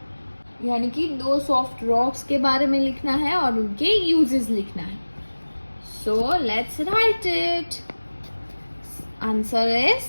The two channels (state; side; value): inverted; both; correlation -1.00